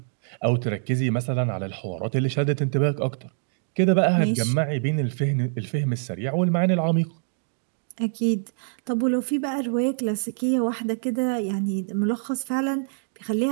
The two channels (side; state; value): left; silent; digital silence